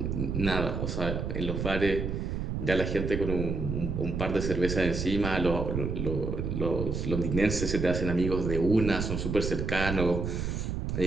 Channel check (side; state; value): right; noise; rumble, 2 dB below the sound